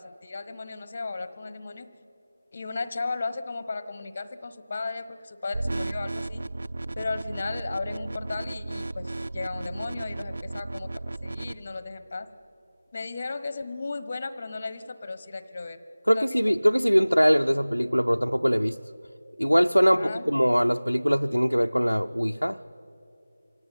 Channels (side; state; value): both; inverted; correlation -0.99